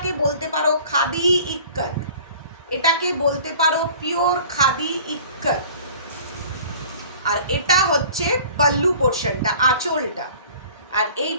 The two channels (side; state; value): both; inverted; correlation -0.47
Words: বলতে পারো খাদি ইক্কত, এটাকে বলতে পারো পিওর খাদি ইক্কত। আর এটা হচ্ছে পাল্লু পোর্শনটা, আঁচলটা। আর এই